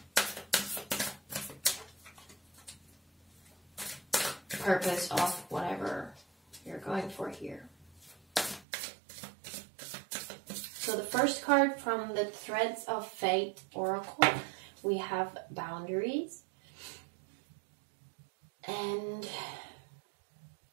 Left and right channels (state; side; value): drops out; left; at 8.7 s